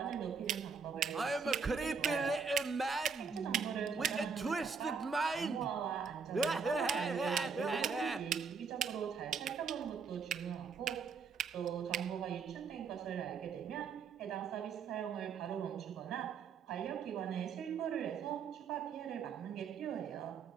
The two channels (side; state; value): left; quieter; 5.6 dB